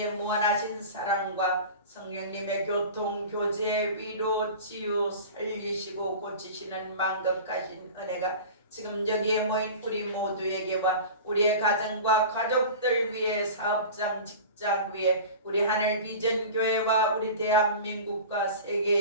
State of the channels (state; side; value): inverted; both; correlation -0.35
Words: 무한하신 사랑과 성령님의 교통, 교제, 위로, 치유, 살리시고 고치시는 만급하신 은혜가 지금 여기에 모인 우리 모두에게와 우리의 가정과 가족들 위해 사업장, 직장 위에 우리 하늘 비전 교회와 우리 대한민국과